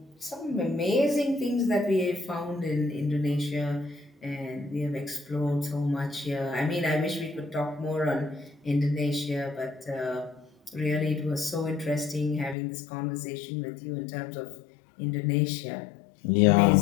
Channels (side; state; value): right; drops out; at 12.6 s